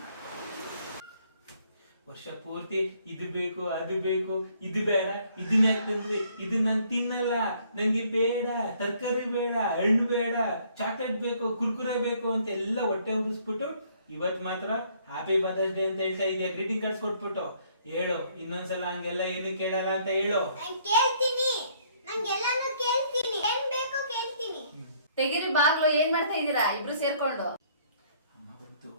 ವರ್ಷ ಪೂರ್ತಿ ಇದು ಬೇಕು ಅದು ಬೇಕು ಇದು ಬೇಡ ಇದನ್ನ ಯಾಕಂದ್ರೆ ಇದು ನಾನು ತಿನ್ನಲ್ಲ, ನಂಗೆ ಬೇಡ, ತರಕಾರಿ ಬೇಡ, ಹಣ್ಣು ಬೇಡ, ಚಾಕ್ಲೇಟ್ ಬೇಕು, ಕುರ್ಕುರೆ ಬೇಕು ಅಂತ ಎಲ್ಲ ಹೊಟ್ಟೆ ಉರಿಸ್ಬಿಟ್ಟು ಇವತ್ ಮಾತ್ರ ಹ್ಯಾಪಿ ಮದರ್ಸ್ ಡೇ ಅಂತ ಹೇಳ್ತಾ ಇದೆಯಾ. ಗ್ರೀಟಿಂಗ್ ಕಾರ್ಡ್ಸ್ ಕೊಟ್ಬಿಟ್ಟು ಹೇಳು, ಇನ್ನೊಂದ್ಸಲ ಹಂಗೆಲ್ಲ ಏನು ಕೇಳಲ್ಲ ಅಂತ ಹೇಳು. ತೆಗಿರಿ ಬಾಗ್ಲು. ಏನ್ ಮಾಡ್ತಾ ಇದೀರಾ ಇಬ್ರು ಸೇರ್ಕೊಂಡು? ಅಮ್ಮ ಗೊತ್ತು,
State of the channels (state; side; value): inverted; both; correlation -0.63